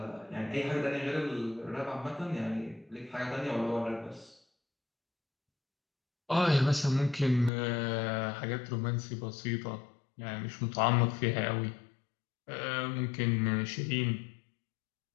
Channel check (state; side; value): drops out; right; at 7.5 s